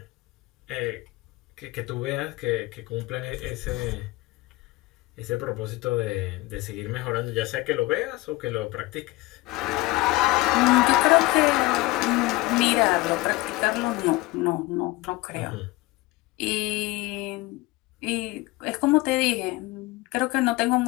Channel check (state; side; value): quieter; right; 20.6 dB